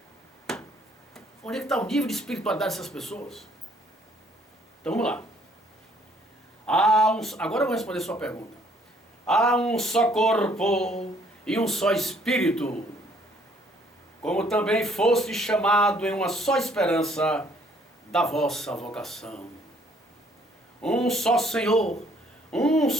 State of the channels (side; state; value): both; normal; correlation 0.63